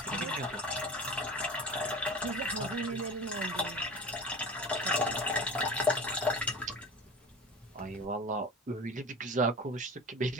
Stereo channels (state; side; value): normal; both; correlation 0.35